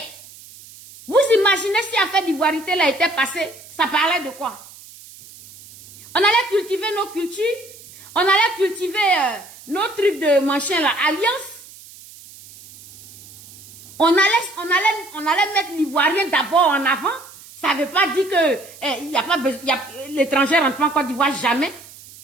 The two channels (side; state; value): right; noise; hiss, 20 dB below the sound